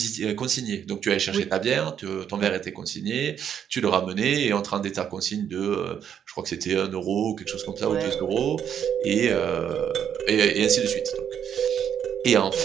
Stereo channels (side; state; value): left; quieter; 8.7 dB